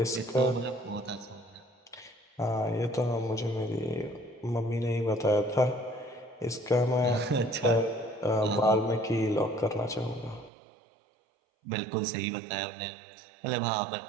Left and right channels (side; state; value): left; drops out; at 10.5 s